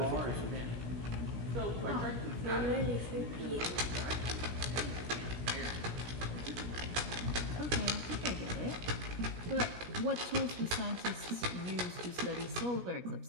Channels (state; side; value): late; left; 17 ms